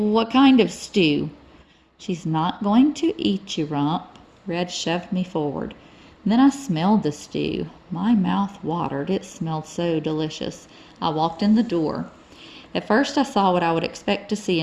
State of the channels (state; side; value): identical; both; correlation 1.00